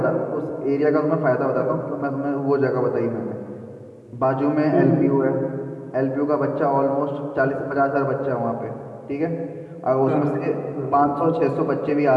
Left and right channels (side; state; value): both; identical; correlation 1.00